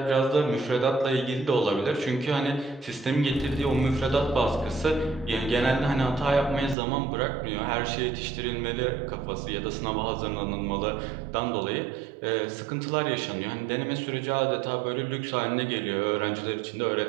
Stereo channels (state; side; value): drops out; left; at 6.8 s